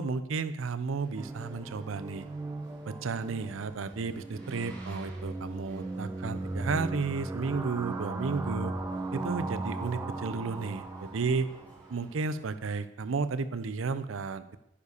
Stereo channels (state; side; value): quieter; left; 3.7 dB